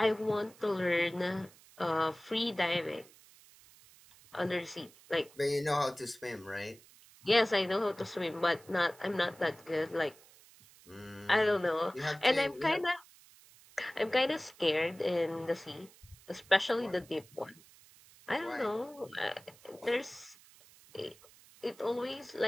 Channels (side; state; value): right; noise; hiss, 24 dB below the sound